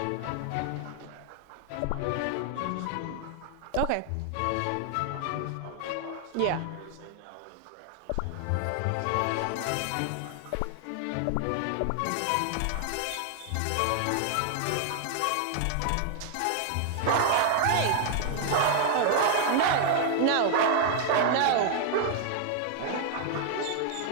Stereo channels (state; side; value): different; both; correlation 0.00